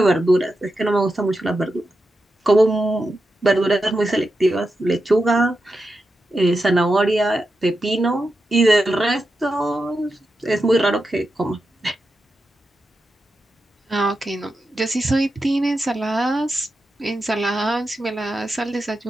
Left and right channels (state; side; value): normal; both; correlation 0.89